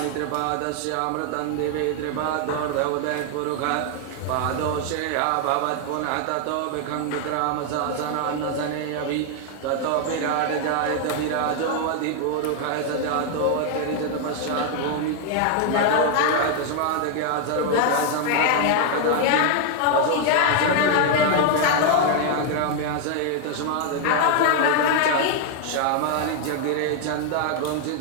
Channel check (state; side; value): different; both; correlation 0.00